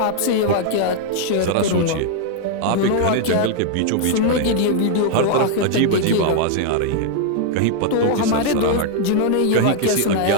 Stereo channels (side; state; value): both; different; correlation 0.00